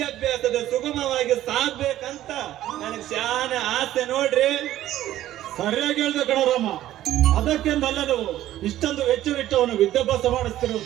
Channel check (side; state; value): left; quieter; 13.5 dB